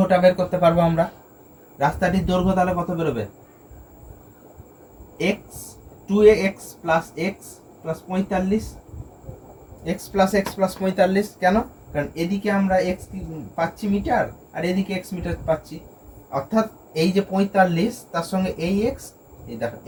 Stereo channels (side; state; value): both; identical; correlation 1.00